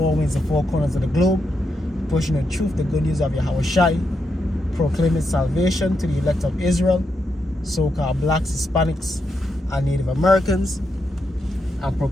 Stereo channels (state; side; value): normal; both; correlation 0.83